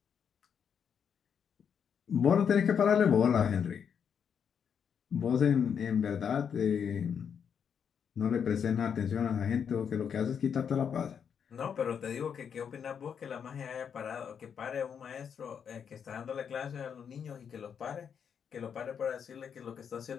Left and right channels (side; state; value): right; quieter; 7.4 dB